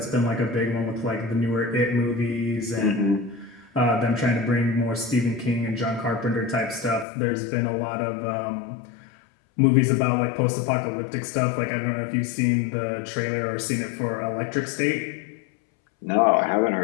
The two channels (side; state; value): right; drops out; at 7.1 s